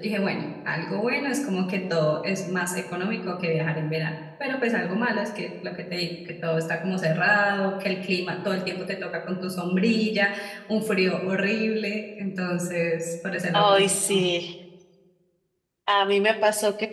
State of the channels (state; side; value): identical; both; correlation 1.00